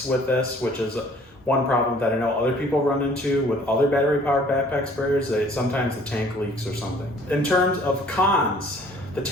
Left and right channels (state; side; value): normal; both; correlation 0.55